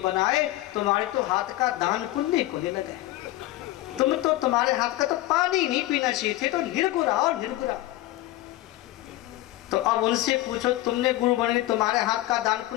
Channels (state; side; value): quieter; right; 16.7 dB